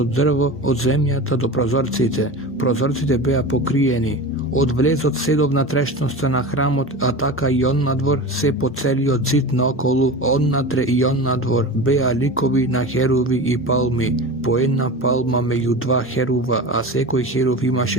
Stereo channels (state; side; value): normal; both; correlation 0.29